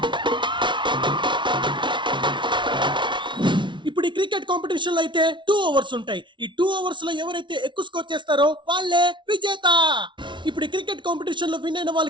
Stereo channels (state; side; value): late; left; 0.24 ms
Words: ఇప్పుడు ఈ క్రికెట్ కాంపిటీషన్ లో అయితే 2 ఓవర్స్ ఉంటాయి. ఈ 2 ఓవర్స్ లో ఎవరైతే ఎక్కువ స్కోర్ చేస్తారో వాళ్ళే విజేత. ఇప్పుడు ఈ క్రికెట్ కాంపిటీషన్ లో విన్ అయిన